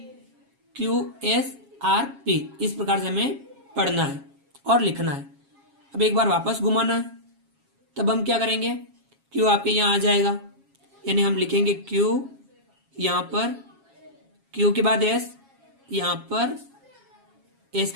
Q S R P, इस प्रकार से हमें पढ़ना है और लिखना है। अब एक बार वापस घुमाना है, तब हम क्या करेंगे, क्यू आपके यहाँ आ जाएगा, यानी हम लिखेंगे क्यू यहाँ पर, क्यू के बाद एस यहाँ पर, एस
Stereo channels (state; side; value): late; left; 7.3 ms